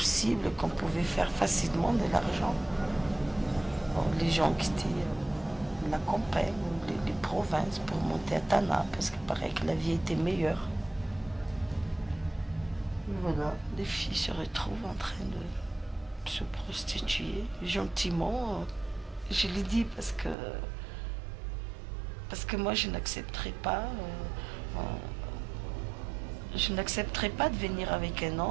qu'on pouvait faire facilement de l'argent. Bon, les gens quittaient la campagne ou les provinces pour monter à Tana, parce qu'il paraît que la vie était meilleure. Et voilà, les filles se retrouvent en train de se prostituer gentiment. Je l'ai dit parce que moi je n'accepterai pas de venir avec un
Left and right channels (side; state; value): left; drops out; at 20.4 s